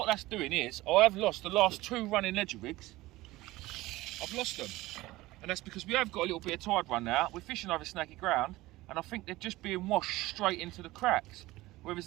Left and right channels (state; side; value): quieter; left; 18.5 dB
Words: that's doing is I have lost the last 2 running ledger rigs. I've lost them, and that's because we have got a little bit of tide run now. We're fishing over snaky ground, and I think they're just being washed straight into the cracks.